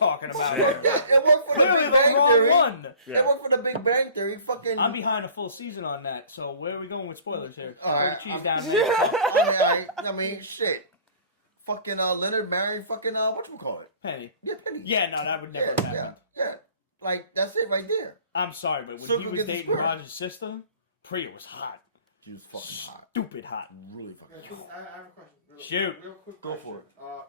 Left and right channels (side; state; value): both; inverted; correlation -0.48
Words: about Fuck here? that. It worked for the Clearly Big the Bang wrong Theory. one. It worked for the Big Bang Theory. Fucking. I'm behind a full season on that, so where are we going with spoilers here? All right, Throw the cheese down and then you can talk. I mean, shit. Fucking Leonard married fucking whatchamacallit? Penny. Yeah, Penny. Yeah, no, that would never have happened. Yeah. Like that's it right there. I'm sorry, but when Circle he was gets the dating square. Roger's sister, Priya was hot. She was fucking hot. Stupid hot. Really fucking hot. I have a question. Shoot. Real quick Go question. for it.